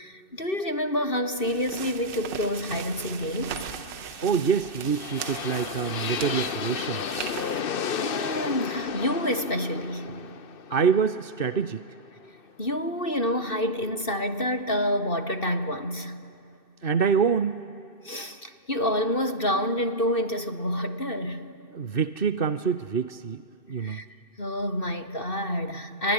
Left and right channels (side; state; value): right; late; 2.6 ms